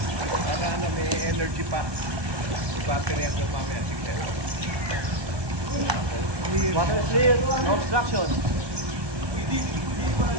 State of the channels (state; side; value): late; left; 1.2 ms